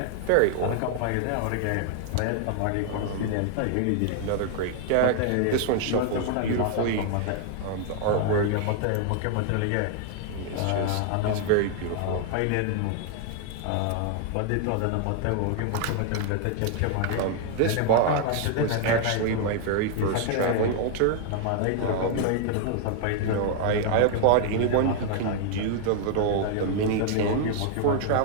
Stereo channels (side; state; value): both; different; correlation 0.00